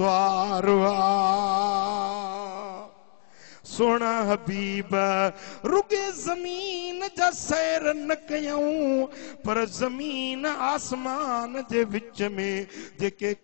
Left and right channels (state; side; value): silent; right; digital silence